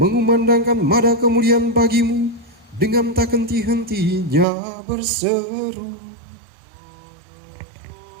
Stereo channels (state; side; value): drops out; left; at 4.5 s